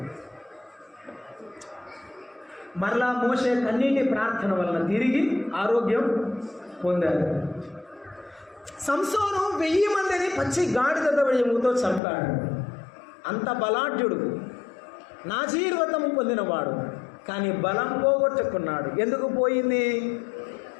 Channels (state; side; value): drops out; right; at 12.0 s